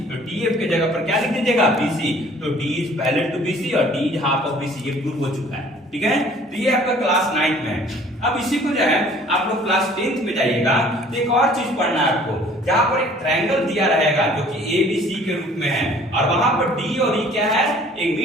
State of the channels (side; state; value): both; normal; correlation 0.53